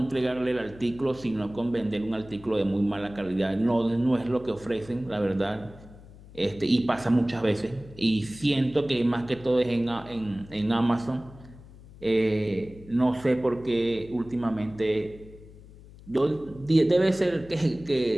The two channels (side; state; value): left; noise; hum, 20 dB below the sound